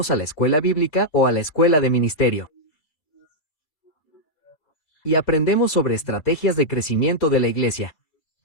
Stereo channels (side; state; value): right; late; 4.4 ms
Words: a la escuela bíblica o a la escuela de ministerio? Y aprendemos sobre estrategias de crecimiento de la iglesia.